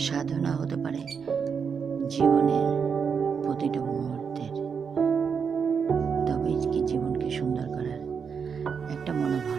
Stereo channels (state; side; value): quieter; left; 6.3 dB